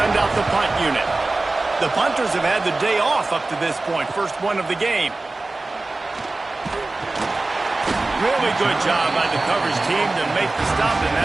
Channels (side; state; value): left; quieter; 3.2 dB